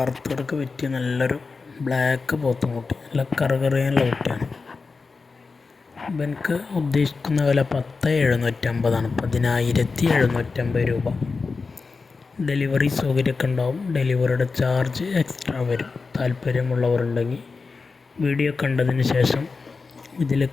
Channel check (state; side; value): quieter; right; 4.4 dB